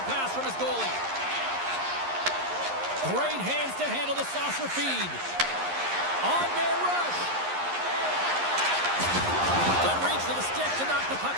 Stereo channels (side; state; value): left; late; 11 ms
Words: pass from his goalie. Great hands to handle the saucer feed. On-man rush. Good reach to the stick to knock the puck